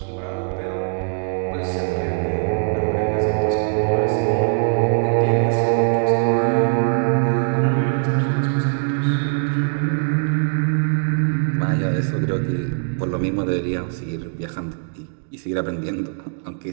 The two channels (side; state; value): left; silent; digital silence